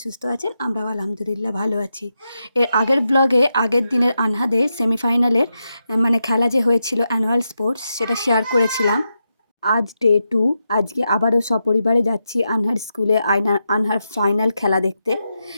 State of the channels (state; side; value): inverted; both; correlation -0.87